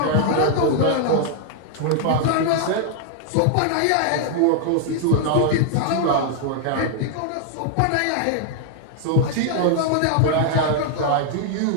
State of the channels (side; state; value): both; different; correlation 0.00